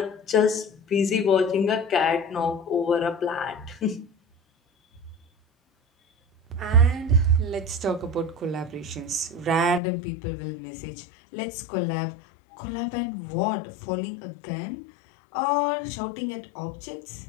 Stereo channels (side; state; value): right; drops out; at 9.8 s